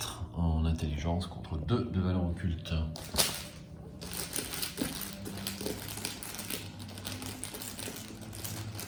en intelligence contre 2 de valeur occulte.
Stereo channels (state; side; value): identical; both; correlation 1.00